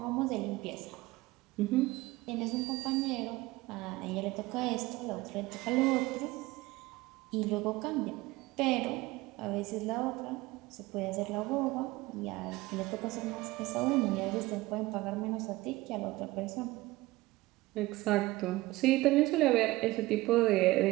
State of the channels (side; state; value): left; quieter; 19.6 dB